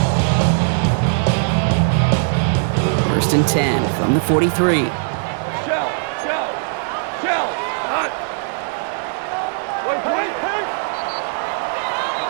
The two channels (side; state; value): left; silent; 66 dB below the other